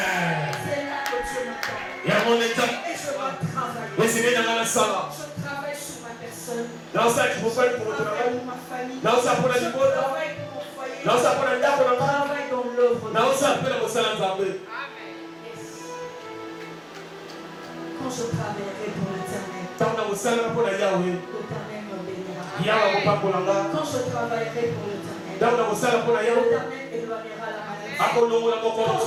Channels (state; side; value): identical; both; correlation 1.00